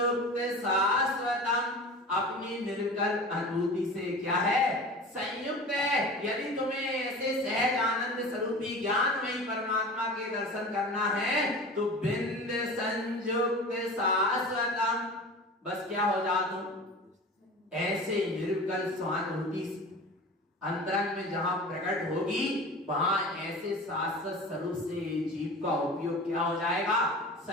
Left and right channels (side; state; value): both; normal; correlation 0.36